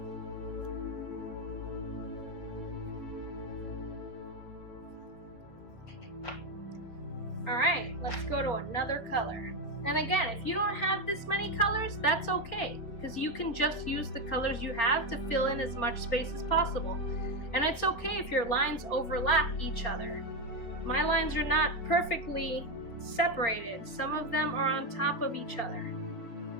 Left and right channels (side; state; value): right; late; 4.8 ms